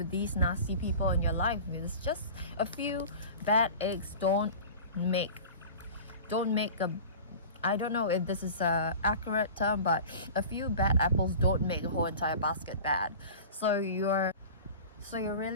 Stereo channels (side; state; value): both; inverted; correlation -0.37